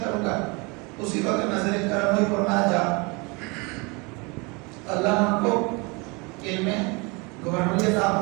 کروں گا؟ اسی وقت نظر کرم ہوئی، فرمایا جا، اللہ نے ان کو علم گورنری عطا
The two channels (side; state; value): left; quieter; 28.3 dB